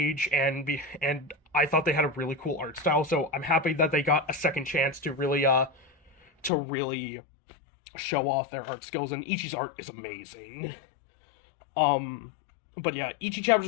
and I thought they had a really cool art style, so I'm happy that they got a second chance to really show off their art skills, and Ichi's art is amazing. But yeah, Ichi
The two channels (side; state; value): right; drops out; at 6.5 s